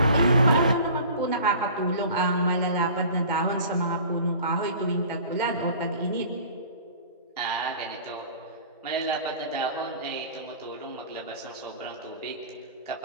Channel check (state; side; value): inverted; both; correlation -0.43